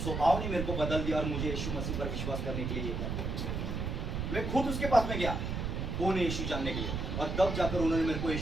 स्वभाव ने मेरे को बदल दिया और मुझे यीशु मसीह पर विश्वास करने के लिए ये कर। मैं खुद उसके पास में गया, कौन है यीशु जानने के लिए, और तब जाकर उन्होंने मेरे को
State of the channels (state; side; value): noise; right; rumble, 2 dB below the sound